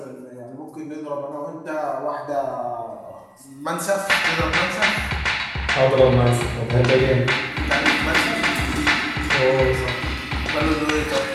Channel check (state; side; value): identical; both; correlation 1.00